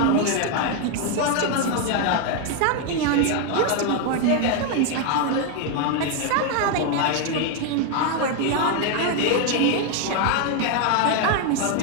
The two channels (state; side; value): different; both; correlation 0.01